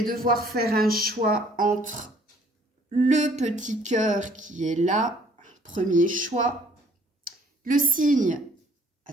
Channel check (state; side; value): normal; both; correlation 0.58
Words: devoir faire un choix entre le petit cœur qui est là, premier choix, le signe,